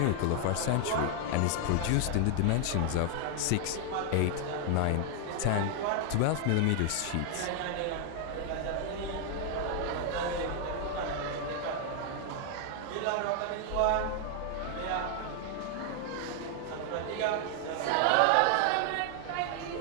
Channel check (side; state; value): both; different; correlation 0.00